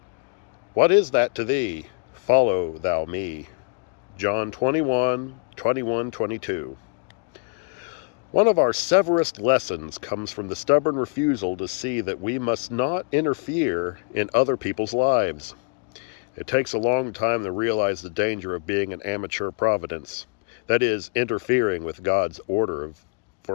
What is that to thee? Follow thou me. John 21:21-22. One of our severest lessons comes from the stubborn refusal to see that we must not interfere in other people's lives. It takes a long time to realize the danger of being an amateur providence, that is, interfering with God's order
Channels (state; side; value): quieter; right; 38.1 dB